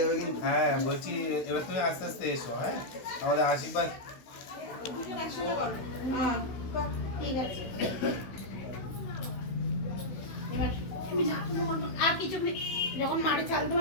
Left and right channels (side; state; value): right; late; 16 ms